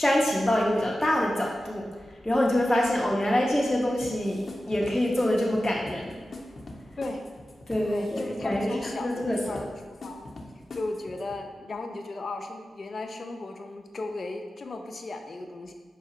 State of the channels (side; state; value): both; normal; correlation 0.94